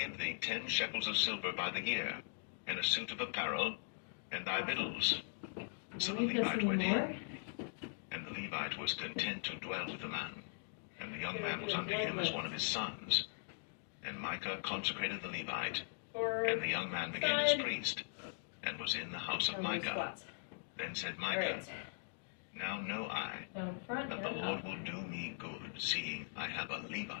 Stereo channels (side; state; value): right; silent; digital silence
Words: thee 10 shekels of silver by the year, and a suit of apparel, and thy victuals. So the Need this Levite went anymore? in, and the Levite was content to dwell with the man, and the young man was unto him as one of his sons. And Micah consecrated the Levite, Forward. and the young man became his Side. priest, and was in the house of And low Micah. squats. Then said All Micah, right. Now know I Down front that the and Lord up. will do me good, seeing I have a